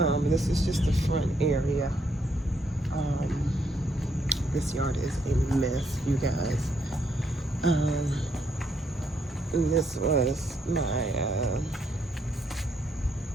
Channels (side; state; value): both; normal; correlation 0.74